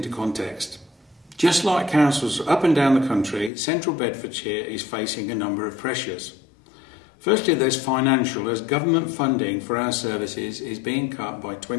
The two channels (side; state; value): right; drops out; at 3.5 s